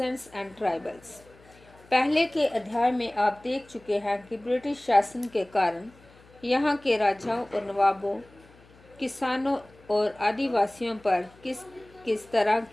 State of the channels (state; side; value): noise; left; hum, 26 dB below the sound